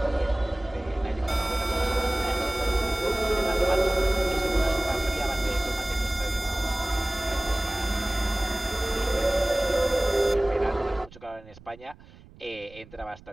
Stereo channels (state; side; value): noise; right; rumble, 22 dB below the sound